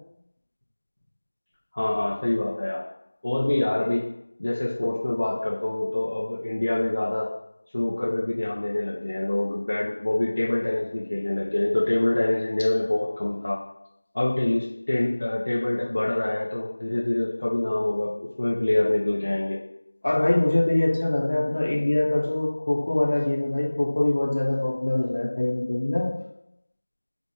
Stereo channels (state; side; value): inverted; both; correlation -1.00